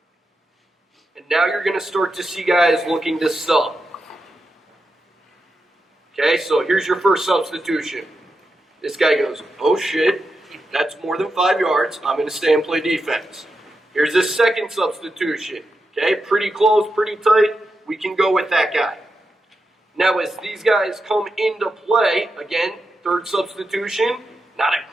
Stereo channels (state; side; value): normal; both; correlation 0.88